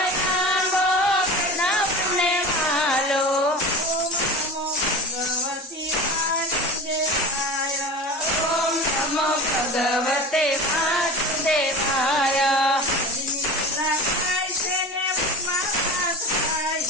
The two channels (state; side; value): normal; both; correlation 0.32